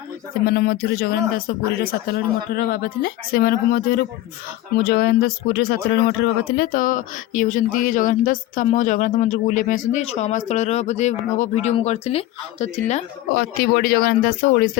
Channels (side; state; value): right; quieter; 15.4 dB